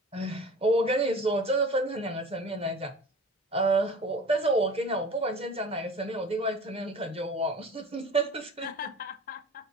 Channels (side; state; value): both; normal; correlation 0.40